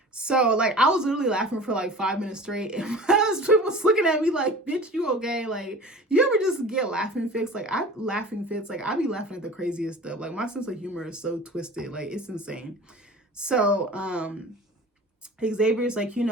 So, like, I was literally laughing for like 5 minutes straight, and my husband was looking at me like, bitch, you okay? Like, you ever just get laughing fits? Like, I be laughing at the craziest stuff. Like, my sense of humor is so twisted. Like, it's insane. So, Xavier's like,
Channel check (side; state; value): both; normal; correlation 0.40